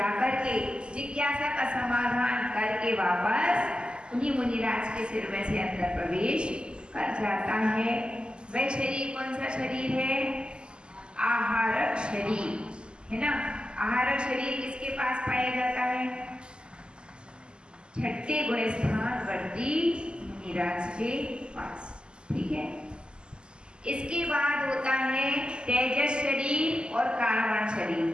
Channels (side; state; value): left; late; 0.049 ms